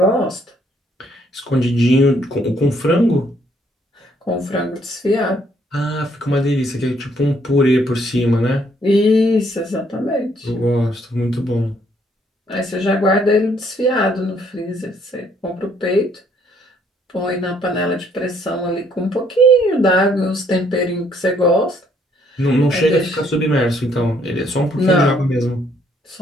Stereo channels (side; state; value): both; normal; correlation 0.67